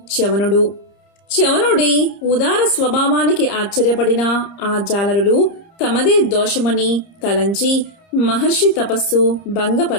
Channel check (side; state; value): right; late; 30 ms